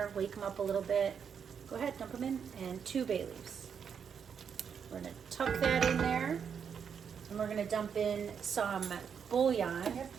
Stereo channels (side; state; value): left; quieter; 7.1 dB